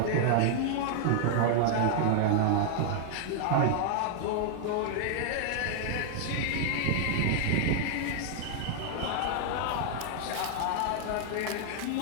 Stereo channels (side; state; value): both; different; correlation 0.00